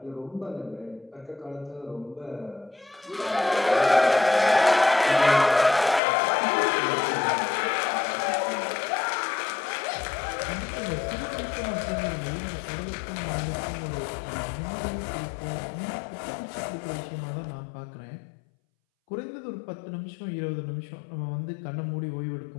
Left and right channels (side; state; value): right; drops out; at 6.0 s